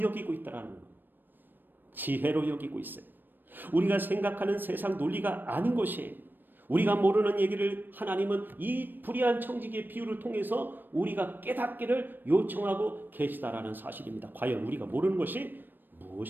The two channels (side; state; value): left; late; 0.093 ms